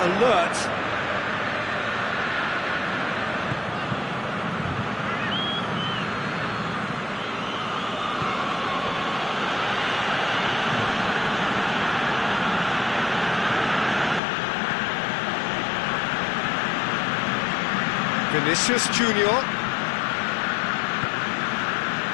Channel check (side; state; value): right; drops out; at 14.2 s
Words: alert. Vinicius Junior.